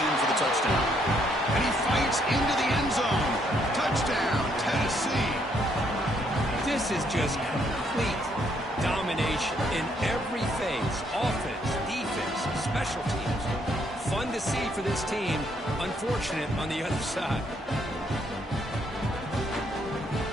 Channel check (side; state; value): both; normal; correlation 0.71